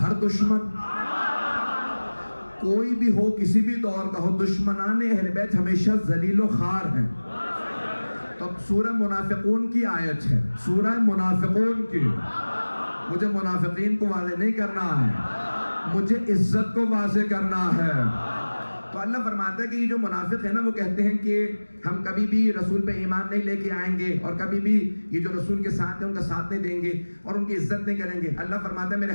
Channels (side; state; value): both; inverted; correlation -1.00